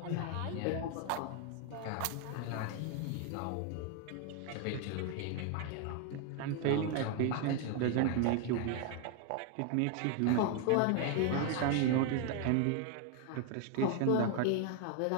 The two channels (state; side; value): different; both; correlation 0.01